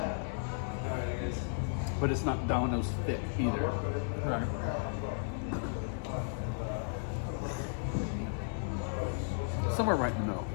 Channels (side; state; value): right; silent; 55 dB below the other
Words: but it's not Domino's thick either. Right. Somewhere right in the middle,